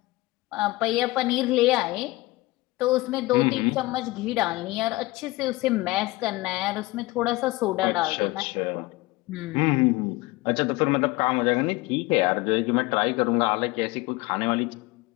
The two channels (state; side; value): quieter; right; 20.7 dB